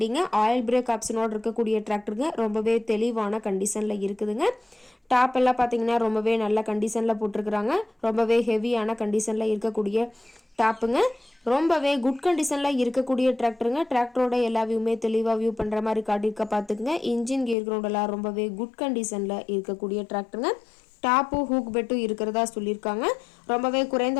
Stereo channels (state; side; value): drops out; right; at 17.6 s